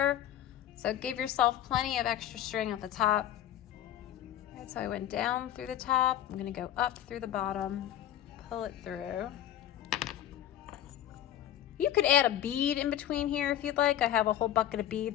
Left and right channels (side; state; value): right; quieter; 11.7 dB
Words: So give yourself plenty of extra string at the top. All right, so I went down through the top. I'm gonna go up through the bottom, pull it through. You could add a bead in between here if you'd like. I have a whole bucket of